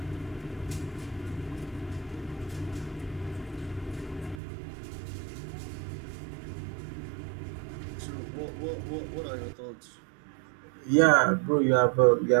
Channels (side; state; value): left; drops out; at 4.4 s